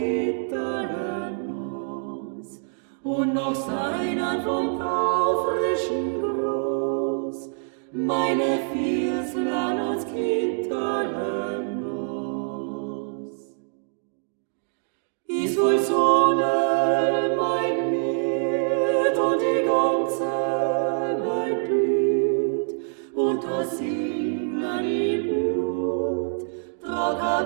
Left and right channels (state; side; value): silent; left; digital silence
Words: aus, und noch seiner vom taufrischen Groß, meine Vierslein uns Gitterlen aus. Ich soll Sonne mein Miet und die ganze Welt blüht, und das Singen im Blut, trag